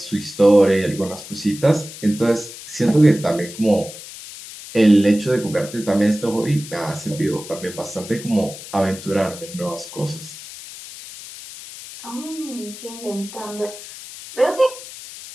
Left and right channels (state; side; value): noise; left; hiss, 14 dB below the sound